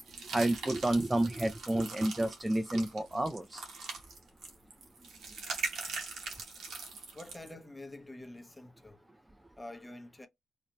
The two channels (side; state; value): both; normal; correlation 0.95